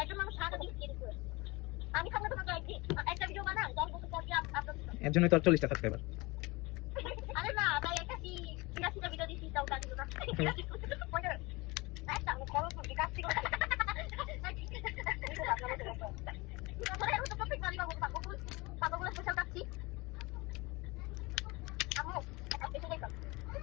একজন মানুষ সারা দিন এডিট করে আমি সামনে তো একদিন একটা ভিডিও বানাই 10 বছর পর কি আপলোড এর জন্যই তো 40টা সাবস্ক্রাইবার আরে না তাই একটা কি 80টা ভিডিও দিছি তাও কাজ দিল না একটা আমি করো তো বিকাশ থেকে পাপাগুলো স্পেশাল কাটছি আমি একটা স্পেশাল দেখলাম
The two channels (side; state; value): right; quieter; 23.9 dB